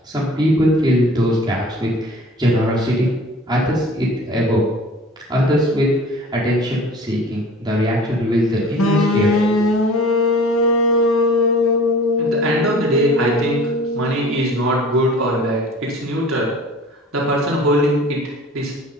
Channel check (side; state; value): both; normal; correlation 0.45